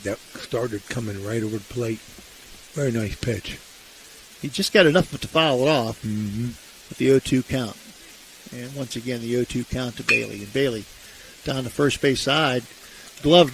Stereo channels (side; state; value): both; identical; correlation 1.00